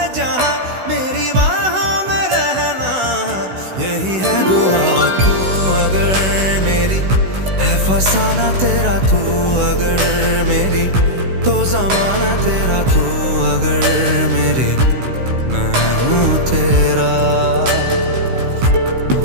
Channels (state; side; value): late; left; 16 ms